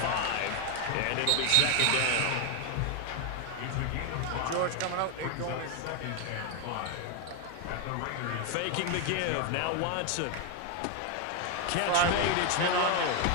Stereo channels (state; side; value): different; both; correlation 0.01